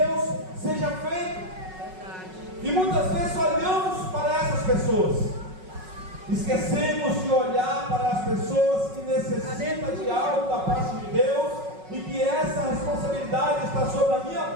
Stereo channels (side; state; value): left; late; 5.4 ms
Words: seja feita. E muitas vezes olhamos para essas pessoas, esquecemos de olhar para as pessoas que necessitam de algo da parte de Deus, e que essa responsabilidade está sobre a minha